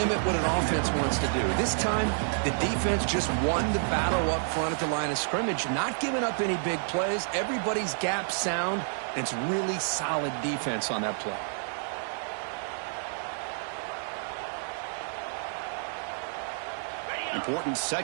what an offense wants to do. This time, the defense just won the battle up front at the line of scrimmage, not giving up any big plays. Everybody's gap sound. It's really solid defense on that play. Important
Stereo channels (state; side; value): silent; left; 58 dB below the other